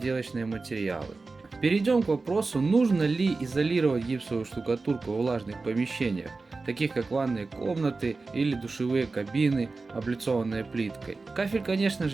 материалы. Перейдем к вопросу, нужно ли изолировать гипсовую штукатурку в влажных помещениях, таких как ванные комнаты или душевые кабины, облицованные плиткой. Кафель, конечно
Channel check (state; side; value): quieter; left; 3.8 dB